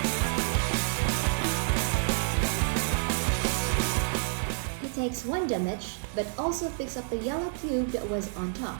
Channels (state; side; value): silent; left; 59 dB below the other